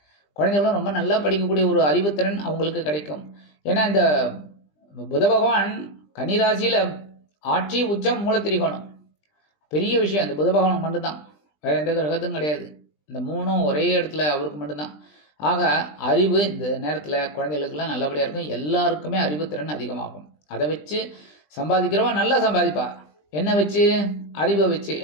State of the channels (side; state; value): right; late; 20 ms